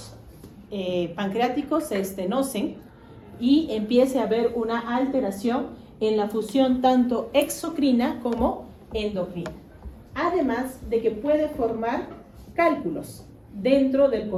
pancreáticos se estenosen y empiece a haber una alteración en la función tanto exocrina como endocrina. Además de que puede formar cálculos dentro del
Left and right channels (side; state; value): both; identical; correlation 1.00